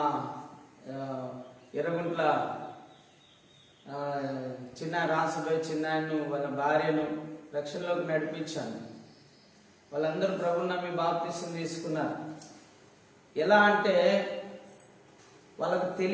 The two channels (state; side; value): identical; both; correlation 1.00